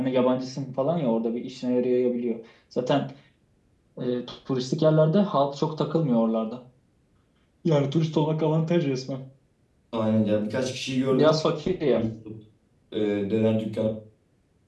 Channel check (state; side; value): identical; both; correlation 1.00